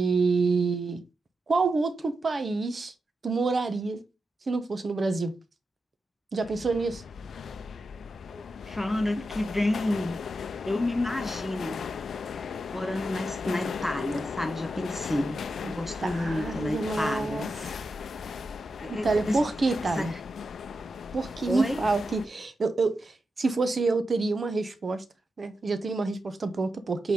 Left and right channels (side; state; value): both; normal; correlation 0.88